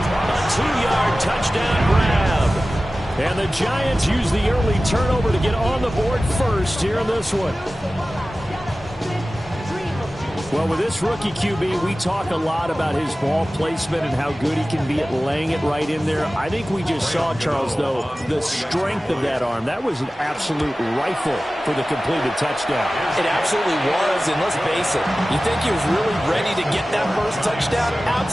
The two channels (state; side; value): normal; both; correlation 0.96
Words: 2-yard touchdown grab. And the Giants use the early turnover to get on the board first here in this one. Well, with this rookie QB, we talk a lot about his ball placement and how good he can be at laying it right in there. I think we just saw, Charles, though, the strength of that arm. That was an absolute rifle for the completed touchdown. It absolutely was, and let's face it, you think he was really ready to get that first touchdown?